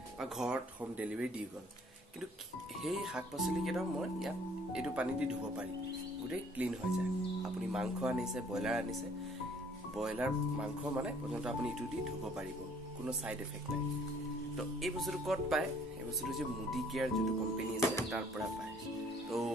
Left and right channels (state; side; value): normal; both; correlation 0.58